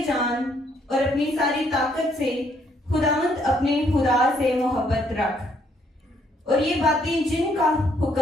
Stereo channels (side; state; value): both; normal; correlation 0.69